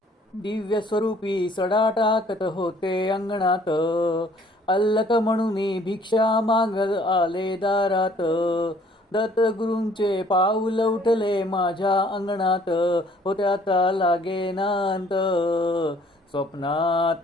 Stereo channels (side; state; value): both; normal; correlation 0.59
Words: दिव्य स्वरूपी सडा टाकत होते अंगणात, अल्लक म्हणून भिक्षा मागत आले दारात. दत्तगुरूंचे पाऊल उठले माझ्या अंगणात, होत्याचा लागेनांत.